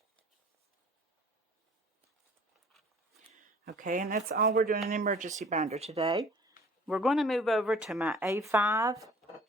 Okay, and that's all we're doing in emergency binder today. We're going to move over to my A5.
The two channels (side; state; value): both; normal; correlation 0.50